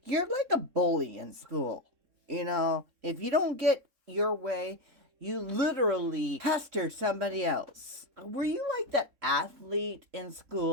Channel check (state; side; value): late; left; 3.7 ms